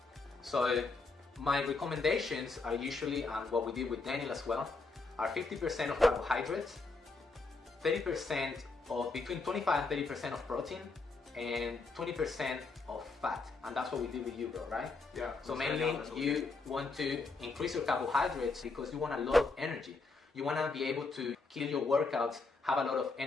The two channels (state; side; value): quieter; right; 3.8 dB